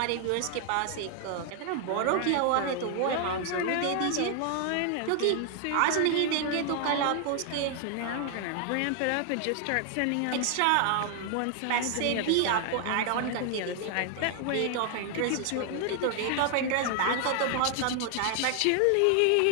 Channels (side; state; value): both; different; correlation 0.00